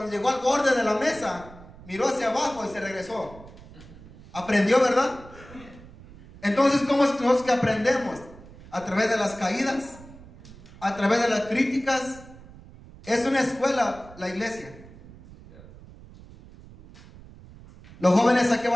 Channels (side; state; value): right; noise; rumble, 20 dB below the sound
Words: llegó al borde de la mesa miró hacia abajo y se regresó. Aprendió, ¿verdad? Entonces, ¿cómo es nosotros que aprendemos? A través de las caídas, a través de las críticas. Es una escuela la iglesia. Los jóvenes, ¿a qué